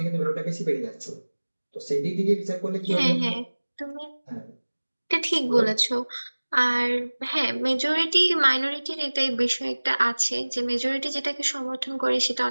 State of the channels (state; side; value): inverted; both; correlation -1.00